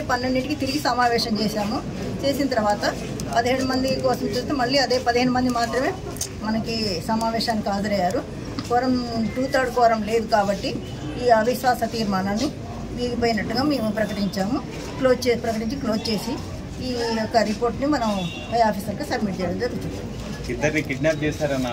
12కి తిరిగి సమావేశం చేశాము. చేసిన తర్వాత 17 మంది కోసం చూస్తే మళ్ళీ అదే 15 మంది మాత్రమే మనకి సమావేశానికి హాజరయ్యారు. కోరం 2/3 కోరం లేదు కాబట్టి ఈ అవిశ్వాస తీర్మానాన్ని వీగిపోయినట్టుగా మేము ప్రకటించాము. క్లోజ్ చేసి ఈ యొక్క రిపోర్ట్ని మనం పై ఆఫీసర్కి సబ్మిట్ చేయడం జరుగుతుంది. ఇద్దరిని కిడ్నాప్ చేశారని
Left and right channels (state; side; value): identical; both; correlation 1.00